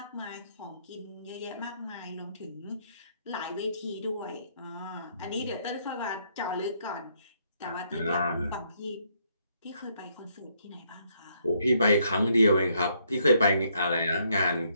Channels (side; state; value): both; inverted; correlation -0.72